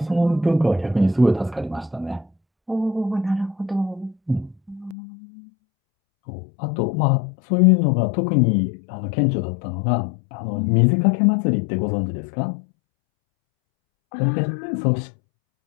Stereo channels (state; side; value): drops out; right; at 5.0 s